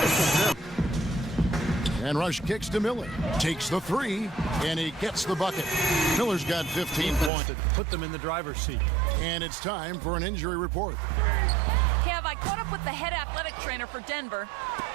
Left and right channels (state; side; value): drops out; left; at 7.3 s